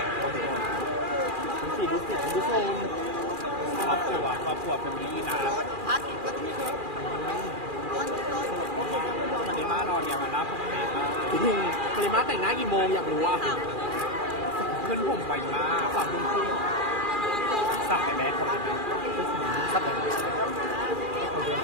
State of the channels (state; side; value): late; left; 2.4 ms